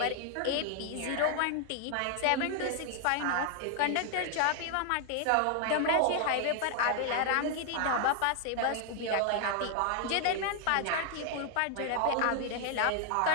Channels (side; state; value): both; different; correlation 0.00